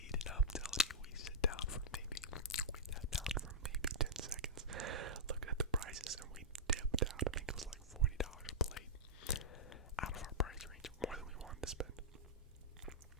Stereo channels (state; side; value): normal; both; correlation -0.10